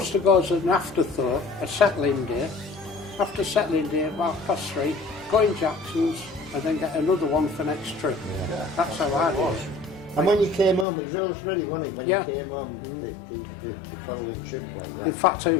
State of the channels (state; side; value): drops out; right; at 10.9 s